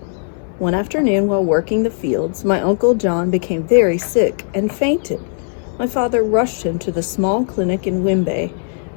One afternoon while working the fields, my Uncle John became very sick and fainted. My father rushed him to the small clinic in Wimbe,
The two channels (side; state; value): right; silent; 67 dB below the other